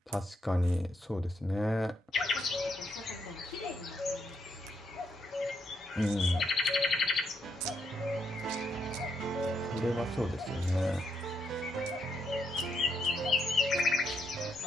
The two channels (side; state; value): both; normal; correlation 0.77